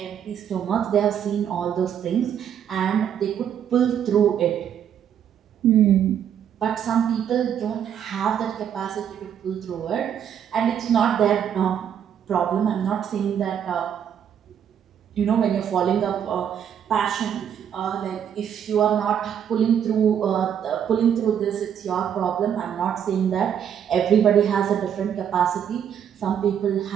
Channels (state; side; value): quieter; left; 8.9 dB